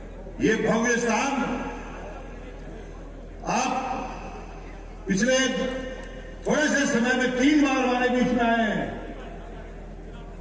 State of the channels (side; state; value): both; identical; correlation 1.00